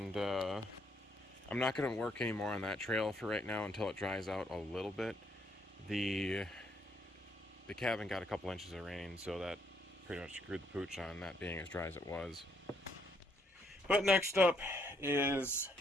I'm not going to work anymore on that trail for right now until it dries out a little bit. The cabin got a couple inches of rain, so that pretty much screwed the pooch on that being as dry as it was. But next up is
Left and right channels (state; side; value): normal; both; correlation 0.71